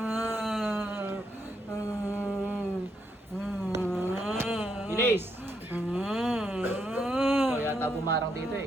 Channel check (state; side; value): normal; both; correlation 0.77